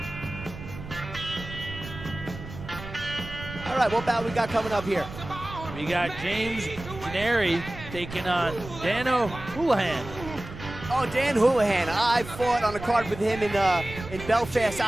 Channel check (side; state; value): right; noise; rumble, 12 dB below the sound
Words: All right, what bout we got coming up here? We got James Canary taking on Dano Hulahan. Oh, Dan Hulahan. I fought on a card with him in Belfast,